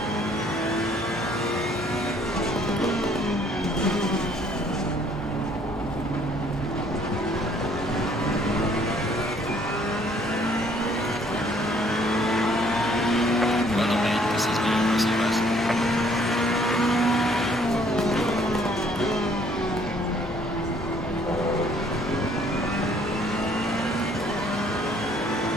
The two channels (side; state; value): both; normal; correlation 0.61